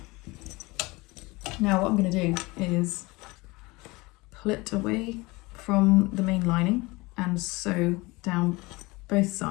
Now what I'm going to do is pull it away from the main lining and sew down both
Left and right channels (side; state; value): right; quieter; 23.3 dB